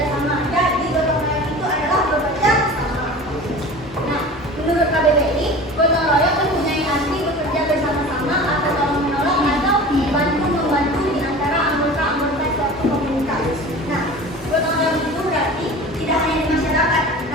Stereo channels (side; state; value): both; normal; correlation 0.37